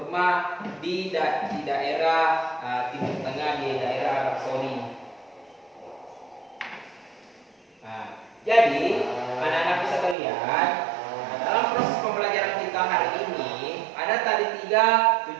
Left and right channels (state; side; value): drops out; left; at 10.2 s